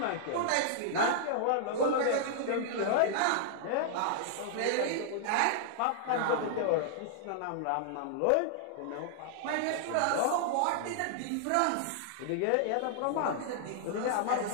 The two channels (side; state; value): both; different; correlation -0.01